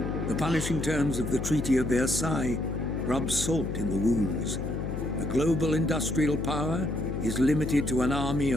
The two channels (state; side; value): noise; left; hum, 4 dB below the sound